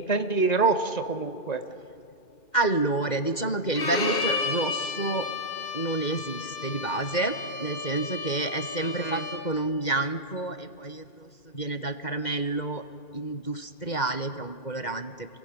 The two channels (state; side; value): late; right; 2.1 ms